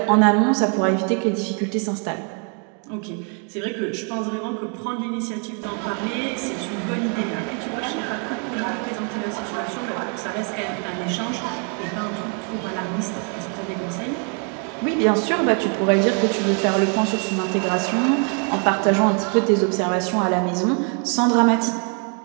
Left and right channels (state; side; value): quieter; left; 39.9 dB